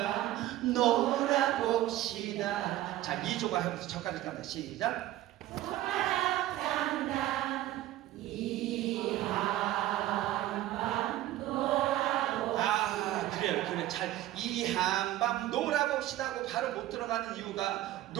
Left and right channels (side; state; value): left; quieter; 14.6 dB